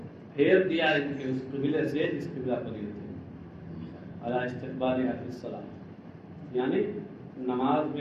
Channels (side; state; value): both; identical; correlation 1.00